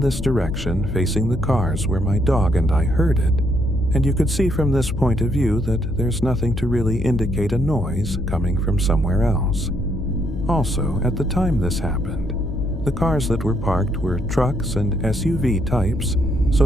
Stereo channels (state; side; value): noise; left; hum, 6 dB below the sound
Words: direction, facing the cars, where my dog and I heard it, and you could see from this point of view that there's nothing to really indicate a noise coming from somewhere else. Also, at the time this happened, the cars that were parked were trucks and SUV types,